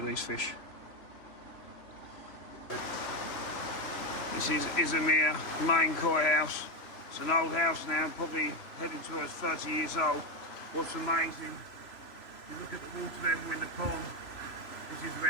these fish. This is Izumia main koi house. It's an old house now, probably heading towards 30 years old. What's amazing, you look at the water level in the pond, this is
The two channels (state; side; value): late; right; 3.0 ms